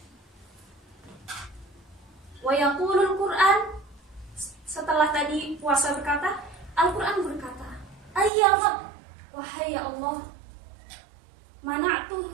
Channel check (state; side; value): drops out; left; at 8.3 s